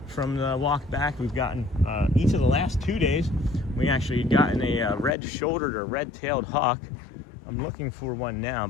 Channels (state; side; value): drops out; right; at 5.1 s